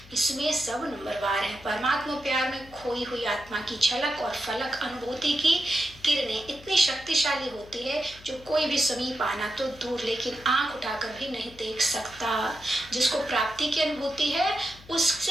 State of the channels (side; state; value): left; noise; hum, 21 dB below the sound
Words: इसमें सब नंबरवार है। परमात्मा प्यार में खोई हुई आत्मा की झलक और फलक अनुभूति की किरणें इतनी शक्तिशाली होती है जो कोई भी समीप आना तो दूर, लेकिन आंख उठाकर भी नहीं देख सकता। जिसको प्राप्ति की अनुभूति है